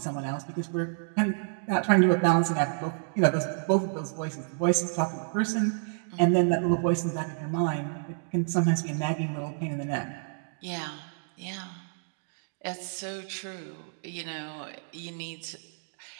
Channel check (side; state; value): left; silent; digital silence